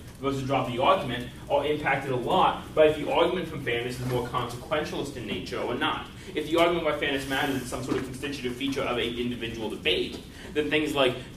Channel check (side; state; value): both; identical; correlation 1.00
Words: versus drop the argument are impacted a lot by if the argument from fairness is more consequentialist in nature or not. If the argument why fairness matters is some sort of constitutive feature of an individual debate, then things like